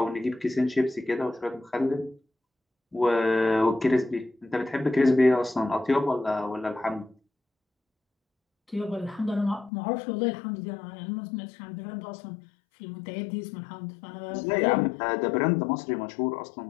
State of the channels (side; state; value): right; drops out; at 9.7 s